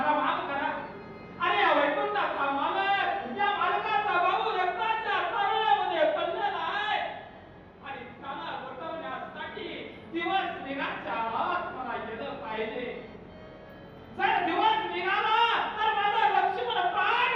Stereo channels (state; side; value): identical; both; correlation 1.00